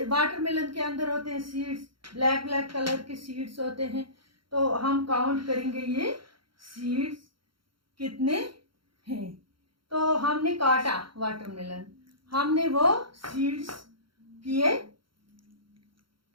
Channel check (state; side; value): late; left; 0.73 ms